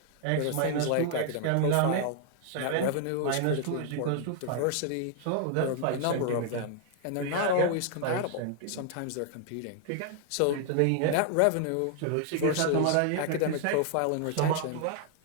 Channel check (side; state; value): both; different; correlation 0.00